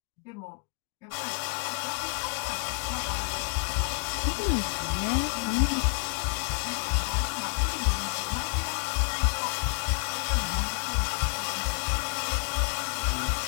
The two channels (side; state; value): right; quieter; 38.6 dB